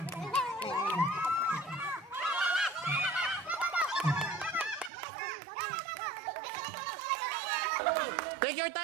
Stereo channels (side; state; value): left; drops out; at 4.9 s